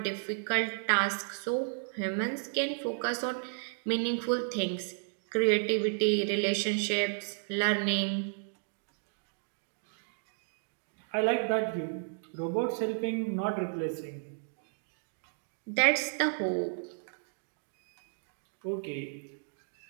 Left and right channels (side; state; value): left; silent; digital silence